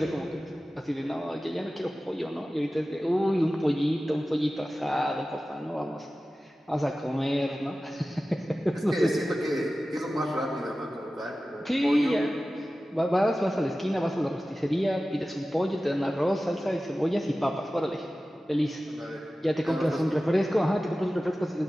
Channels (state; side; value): normal; both; correlation 0.95